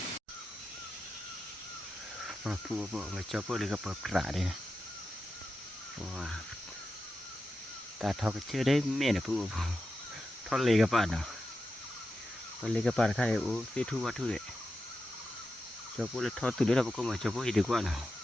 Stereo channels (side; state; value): both; normal; correlation 0.90